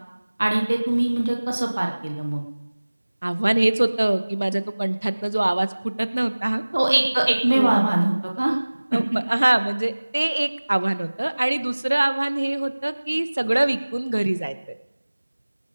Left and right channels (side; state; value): both; inverted; correlation -1.00